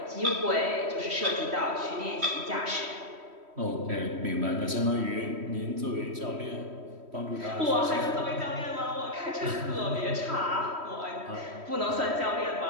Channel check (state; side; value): late; left; 3.1 ms